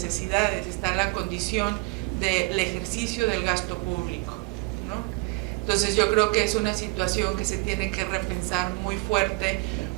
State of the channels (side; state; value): left; quieter; 25.3 dB